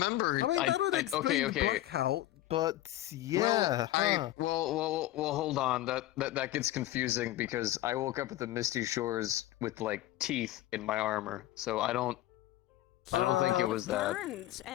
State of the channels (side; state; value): right; quieter; 15.3 dB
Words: I mean, that would explain the blackout, but yeah, Well, hold on. That gets confusing because I woke up at the Misty Shores with like teeth in my armor, so I don't think it was that. burns